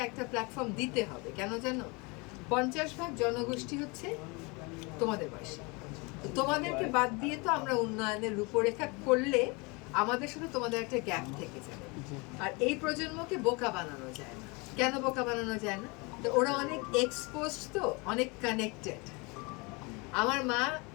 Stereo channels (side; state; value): right; quieter; 28.3 dB